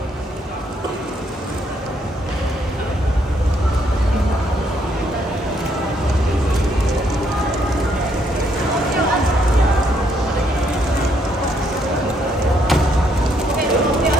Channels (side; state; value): both; normal; correlation 0.72